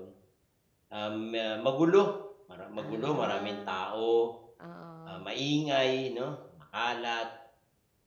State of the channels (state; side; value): identical; both; correlation 1.00